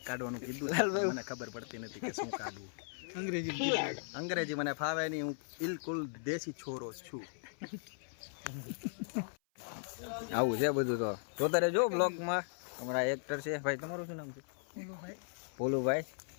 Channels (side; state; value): right; silent; 53 dB below the other